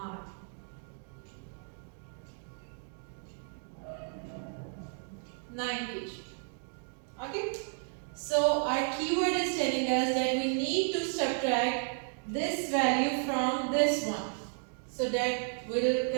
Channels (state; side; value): silent; left; 56 dB below the other